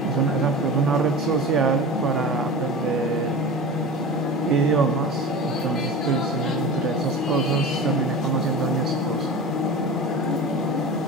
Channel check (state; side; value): normal; both; correlation 0.32